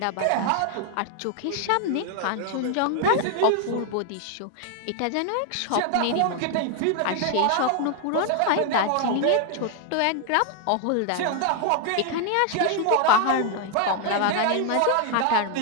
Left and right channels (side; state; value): both; different; correlation 0.00